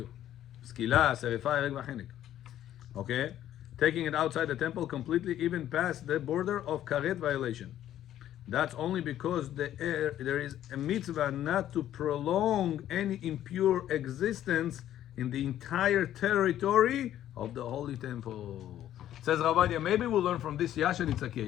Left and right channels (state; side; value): quieter; right; 11.9 dB